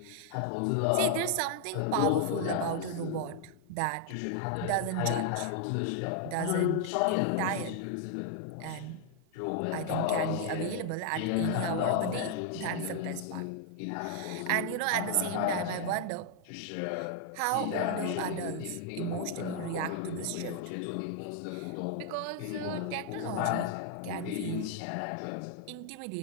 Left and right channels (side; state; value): both; different; correlation 0.00